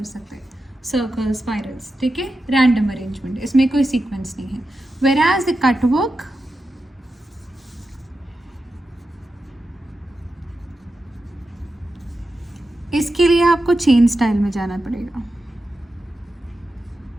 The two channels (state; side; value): normal; both; correlation 0.90